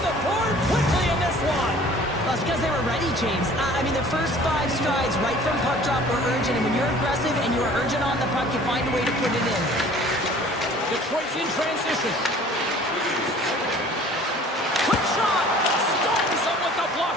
the board quickly in this one. Well, it's because they were ready, James. I mean, the first 5 strides right from puck drop were urgent, and when you're aggressive and you're urgent on the puck, you find a way to put it in. Detroit's in transition. Quick shot! Stones him with the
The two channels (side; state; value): both; normal; correlation 0.50